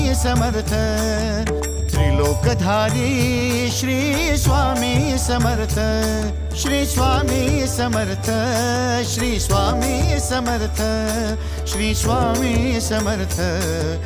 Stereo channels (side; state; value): both; identical; correlation 1.00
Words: समर्थ त्रिलोकधारी श्री स्वामी समर्थ श्री स्वामी समर्थ श्री स्वामी समर्थ श्री स्वामी समर्थ